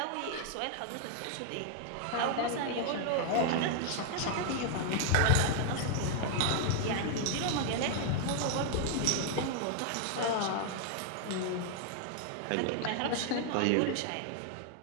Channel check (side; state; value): both; different; correlation 0.00